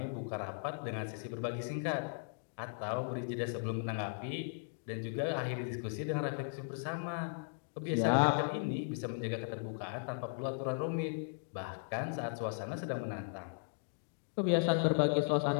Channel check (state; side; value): silent; right; digital silence